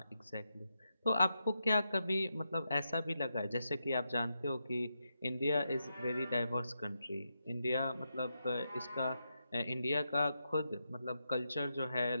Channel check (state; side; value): inverted; both; correlation -0.85